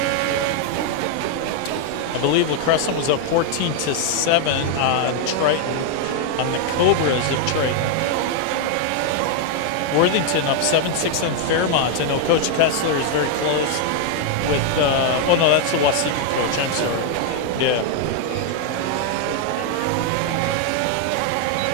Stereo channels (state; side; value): different; both; correlation 0.00